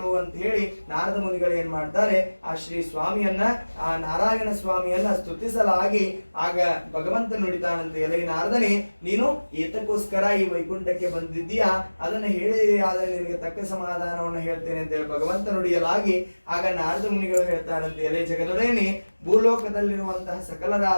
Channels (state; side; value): inverted; both; correlation -1.00